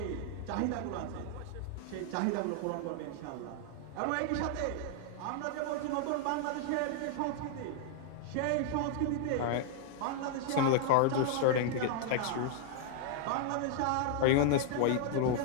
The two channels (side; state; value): both; different; correlation 0.00